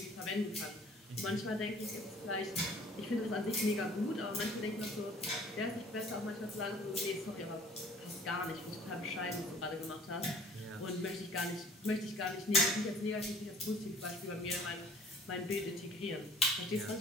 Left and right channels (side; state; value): both; normal; correlation 0.51